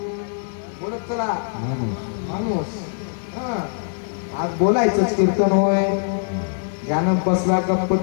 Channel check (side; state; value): right; silent; 64 dB below the other